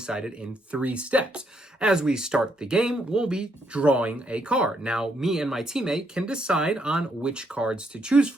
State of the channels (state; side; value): normal; both; correlation 0.74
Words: in 3 steps. As we start the game, we'll be drawing a card. Now, me and my teammate can decide on which cards to choose